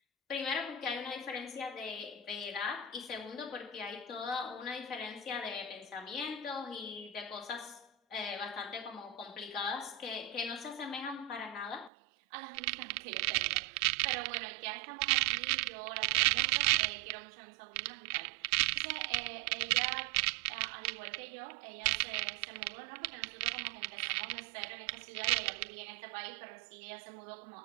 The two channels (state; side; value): drops out; left; at 11.9 s